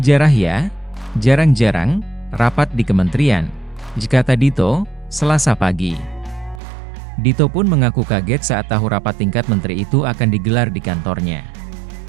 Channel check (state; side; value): drops out; left; at 6.6 s